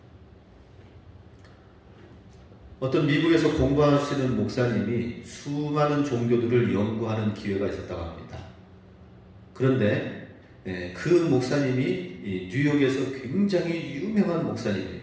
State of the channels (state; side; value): identical; both; correlation 1.00